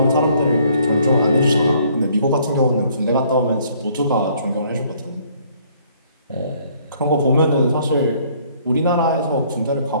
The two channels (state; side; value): inverted; both; correlation -0.62